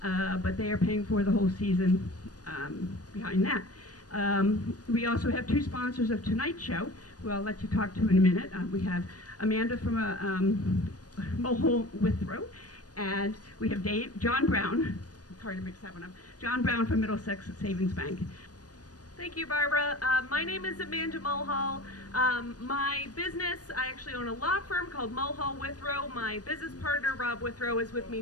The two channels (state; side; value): late; right; 0.68 ms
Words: but they are paying for the whole season behind that. We also have two sponsors of tonight's show, who I'll let you talk to in a minute. We have Amanda from Mulhall Withrow, and we have John Brown. It's hard to mix that one up. John Brown from Middlesex Savings Bank. Thank you, Barbara. My name is Amanda Mulhall. My business, I actually own a law firm called Mulhall Withrow. My business partner, Rob Withrow, is with me